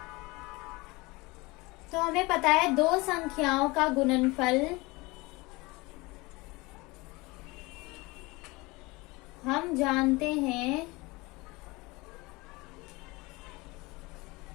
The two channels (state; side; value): quieter; right; 23.6 dB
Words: तो हमें पता है दो संख्याओं का गुणनफल हम जानते हैं